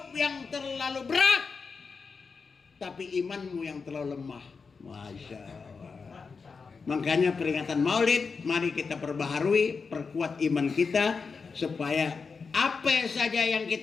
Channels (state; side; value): quieter; right; 5.0 dB